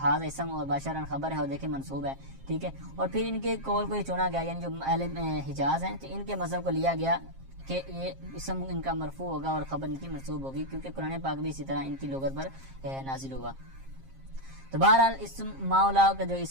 ہاذا اسم اور باشرن خبر ہے اور دیکھیں منصوب ہے. ٹھیک ہے, اور پھر ان کے قول کو یہ چنا گیا, یعنی جو اہل حجاز ہیں تو ان کے مذہب کو لیا گیا کہ یہ اسم ان کا مرفوع ہوگا اور خبر ان کی منصوب ہوگی, کیونکہ قرآن پاک بھی اسی طرح ان کی لغت پر نازل ہوا. تو بہرحال اسم مولا کا جو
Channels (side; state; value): left; late; 7.5 ms